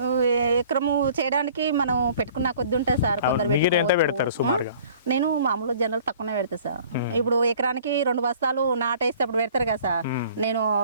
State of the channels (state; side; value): inverted; both; correlation -0.51